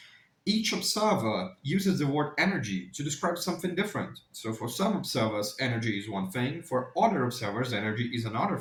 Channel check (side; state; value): both; identical; correlation 1.00